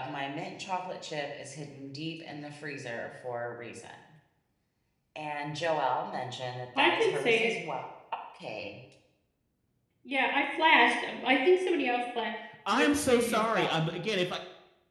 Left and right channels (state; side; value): identical; both; correlation 1.00